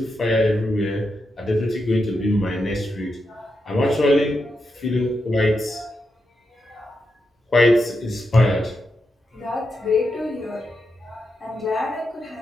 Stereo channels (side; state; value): both; normal; correlation 0.86